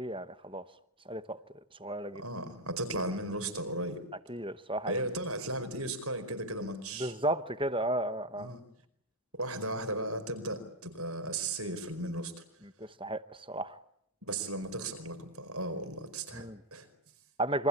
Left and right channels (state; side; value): normal; both; correlation 0.04